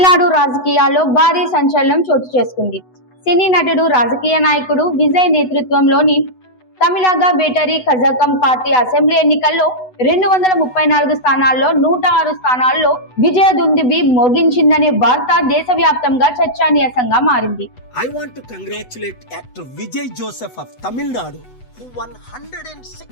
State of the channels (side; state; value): right; late; 8.0 ms